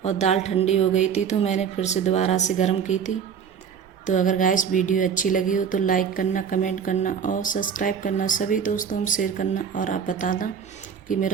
और दाल ठंडी हो गई थी तो मैंने फिर से दोबारा से गर्म की थी। तो अगर गाइस वीडियो अच्छी लगी हो तो लाइक करना, कमेंट करना और सब्सक्राइब करना, सभी दोस्तों में शेयर करना। और आप बताना कि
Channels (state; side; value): quieter; left; 7.3 dB